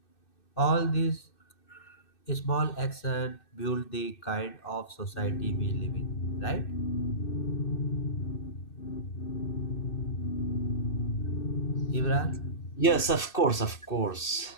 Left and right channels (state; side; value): late; right; 2.6 ms